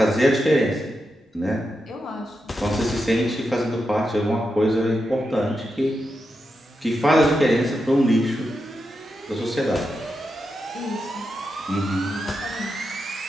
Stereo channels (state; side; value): normal; both; correlation 0.87